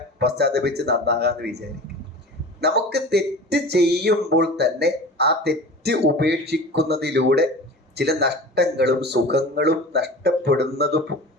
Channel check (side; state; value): both; normal; correlation 0.36